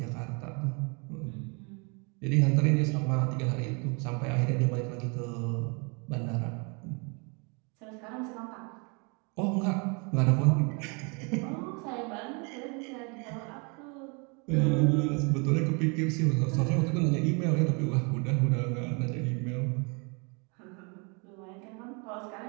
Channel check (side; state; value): left; quieter; 32.9 dB